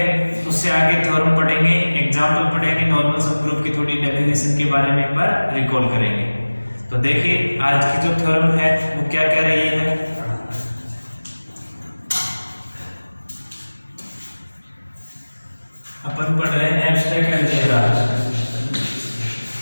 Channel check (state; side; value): inverted; both; correlation -1.00